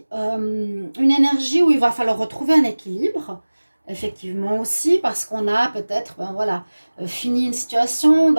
une énergie où il va falloir retrouver un équilibre, effectivement aussi, parce qu'on a peut-être, fini une situation, on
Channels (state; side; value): inverted; both; correlation -1.00